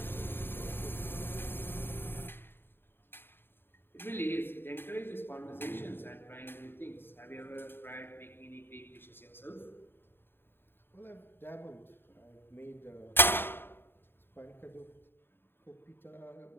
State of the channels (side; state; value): right; late; 0.10 ms